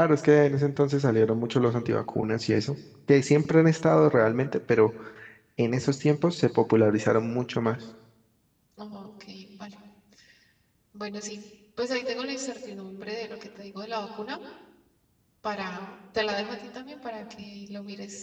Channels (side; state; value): both; identical; correlation 1.00